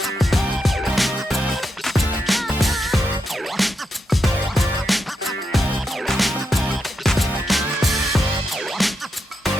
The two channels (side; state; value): both; normal; correlation 0.84